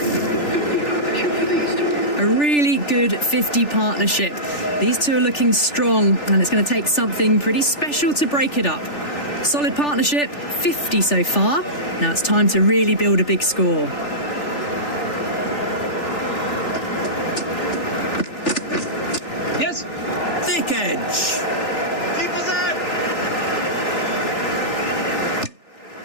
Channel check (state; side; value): late; right; 3.4 ms